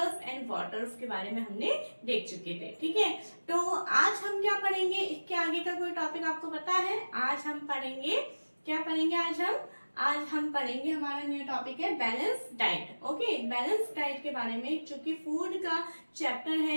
एंड वाटर्स के बारे में हमने देख चुके थे। ठीक है, तो आज हम क्या पढ़ेंगे, इसके आगे का कोई टॉपिक आपको पता है? आज हम पढ़ेंगे, क्या पढ़ेंगे आज हम पढ़ेंगे, हमारा न्यू टॉपिक है balance diet. Okay, balance diet के बारे में, चूंकि फूड का चैप्टर है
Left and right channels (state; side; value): inverted; both; correlation -1.00